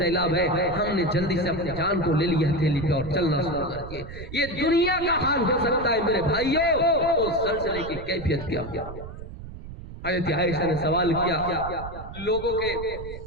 ہے، ہم نے جلدی سے اپنی جان کو لے لیا ہتھیلی پہ اور چلنا شروع کر دیا۔ یہ دنیا کا حال ہو سکتا ہے میرے بھائیوں، اس زلزلے کی کیفیت کیا کیا۔ حضرت عائشہ نے سوال کیا، لوگوں کے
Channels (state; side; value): noise; right; rumble, 12 dB below the sound